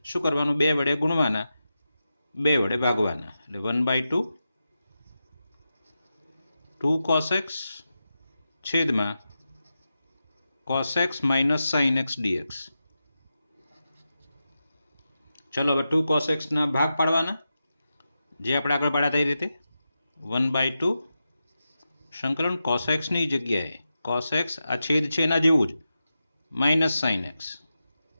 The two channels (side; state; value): both; inverted; correlation -0.90